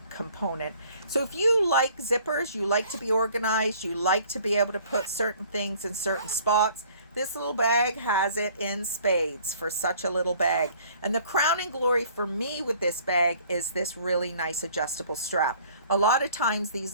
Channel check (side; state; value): both; inverted; correlation -0.55